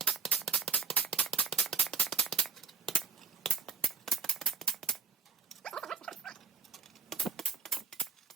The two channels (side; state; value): left; quieter; 5.4 dB